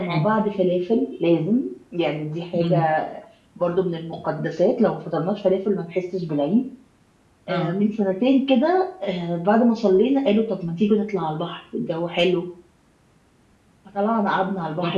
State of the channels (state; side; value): identical; both; correlation 1.00